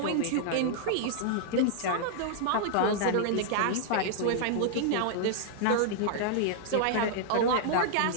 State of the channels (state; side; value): different; both; correlation -0.01